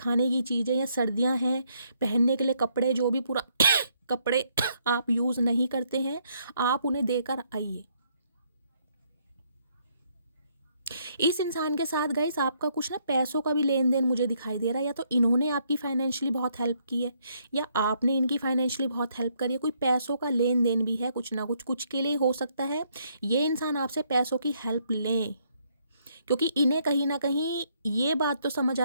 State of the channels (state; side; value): inverted; both; correlation -0.71